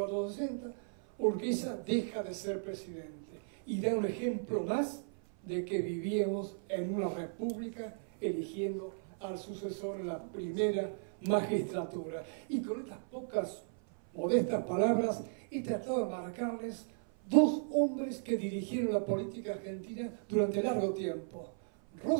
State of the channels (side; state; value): left; silent; 54 dB below the other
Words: Urquiza deja de ser presidente y da un ejemplo más de que vivíamos en una república eligiendo al sucesor en la primera magistratura. Y con estas pocas modestas palabras he tratado de marcarles 2 hombres que dirigieron la política argentina durante largo tiempo,